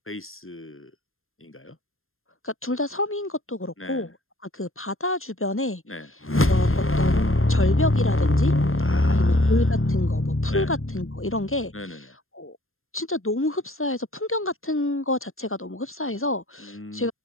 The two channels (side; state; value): right; late; 0.61 ms